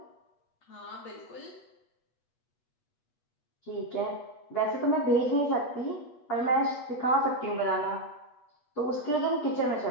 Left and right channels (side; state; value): right; late; 8.3 ms